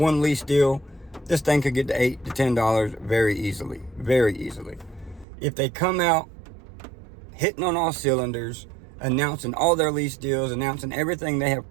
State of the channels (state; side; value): drops out; left; at 5.2 s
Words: lease deal, this thing could get to $8 to $10 very easily, very easily. If they come out hitting on all cylinders, announcing all their lease deals, announcing everything they have